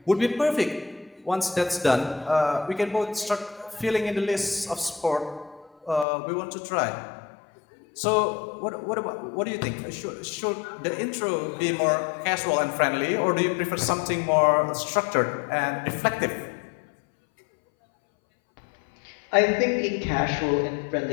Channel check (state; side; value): drops out; right; at 6.1 s